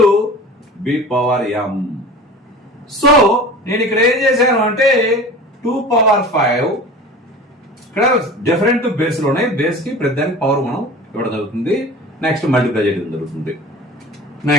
B power M. So నేను ఇక్కడ ఏం చేశాను అంటే 2 పవర్ 5 ఇక్కడ డిఫరెంట్ బేస్లు ఉన్నాయి. బేస్ కి ప్రతి దానికి పవర్ మనం ఇవ్వడం జరుగుతుంది. నెక్స్ట్ మల్టిప్లై చేయడం జరుగుతుంది.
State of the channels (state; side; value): normal; both; correlation 0.38